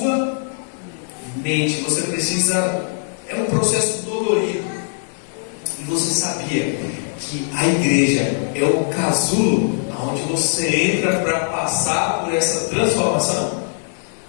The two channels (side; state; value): right; silent; digital silence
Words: mente. Você precisa, é um processo dolorido. E você sabia que a igreja é o casulo onde você entra para passar por essa transformação?